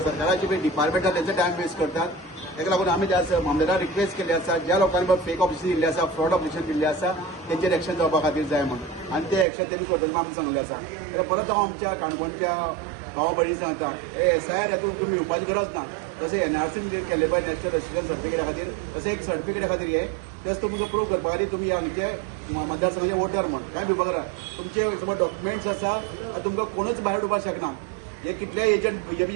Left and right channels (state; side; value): drops out; left; at 9.5 s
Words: पळय डिपार्टमेंट आसा तेंचो टायम वेस्ट करतात ताका लागून आमी त्या मामलेदार रिक्वेस्ट केली आसा ज्या लोकांनी फेक ऑपरेशन दिल्ले आसा फ्रॉड ऑपरेशन दिल्ले आसा तेंचेर एक्शन जावपा खातीर जाय म्हणून आनी ते एक्शन तेमी करतले आमी सांगले आसा आनी परत हांव आमच्या काणकोणच्या भावा भयणी सांगता हे एसआयआर हातूंत तुमी येवपाची गरज ना जशें एनआरसीन केल्ले पळय नॅशनल रजिस्ट्रेशन सर्टिफिकेटा खातीर तशें एक सर्टिफिकेटा खातीर हे जस्ट तुमकां प्रूव करपा खातीर तुमी हांगचे मतदारसंघाचे वोटर म्हण काय भिवपाक करा तुमचे समज डॉक्युमेंट्स आसा आनी तुमकां कोणूच भायर उडोवपाक शकना हे कितले एजंट